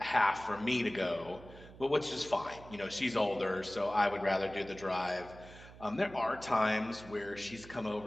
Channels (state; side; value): noise; right; hum, 18 dB below the sound